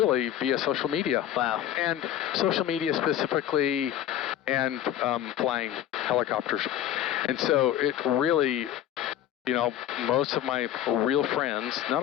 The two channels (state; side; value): quieter; right; 11.5 dB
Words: via social media. Wow. And social media specifically, and flying helicopters. And so it really, you know, most of my real friends, not